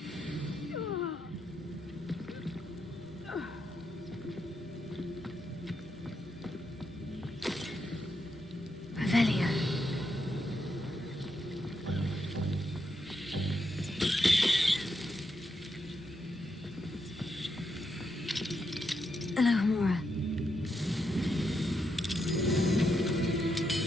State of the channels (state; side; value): normal; both; correlation 0.82